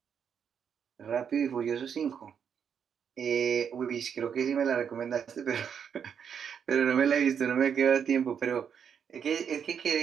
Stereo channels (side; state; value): left; quieter; 7.5 dB